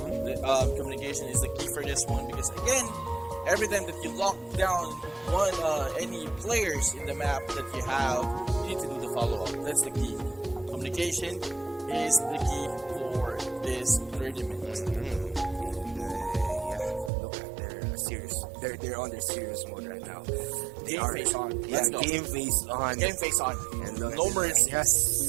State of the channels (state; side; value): drops out; left; at 17.1 s